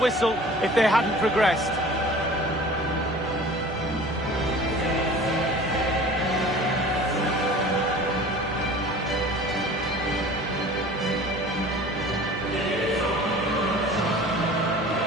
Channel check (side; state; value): both; normal; correlation 0.43